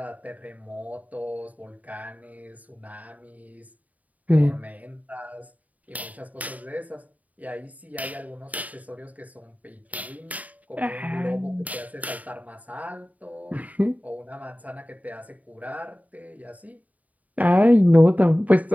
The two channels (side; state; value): left; late; 0.073 ms